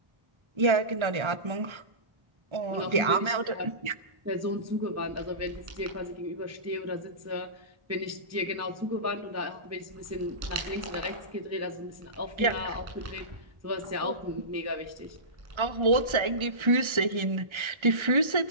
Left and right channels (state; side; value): late; left; 1.3 ms